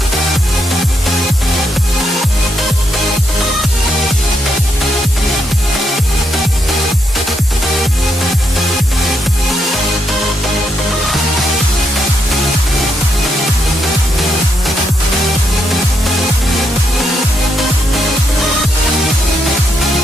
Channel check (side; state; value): both; normal; correlation 0.79